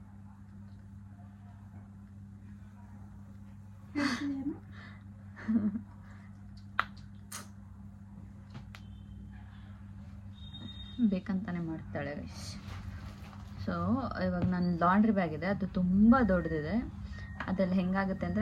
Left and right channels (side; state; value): both; identical; correlation 1.00